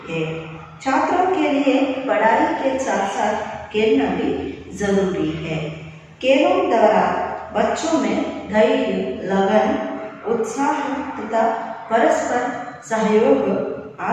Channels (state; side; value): identical; both; correlation 1.00